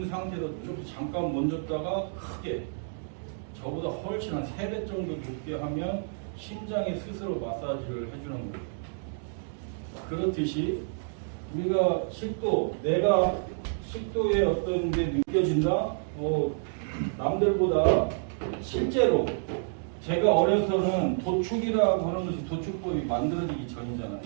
상태로 좀 잠깐 멈췄다가 크게 저보다 훨씬 한 3배 정도 높게 하면 심장이 스스로 마사지를 해주는 거예요. 그렇듯이 우리가 식도, 내가 식도에 어떤 게 느껴진다? 남들보다 실제로 제가 어려서는 도축이라고 하는 것이 도축법이 만들어지기 전이잖아.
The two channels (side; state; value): left; silent; digital silence